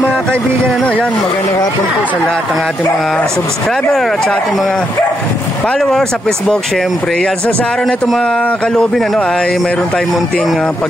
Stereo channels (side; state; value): both; normal; correlation 0.79